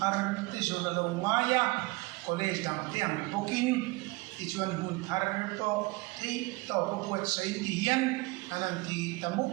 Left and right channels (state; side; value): quieter; left; 23.1 dB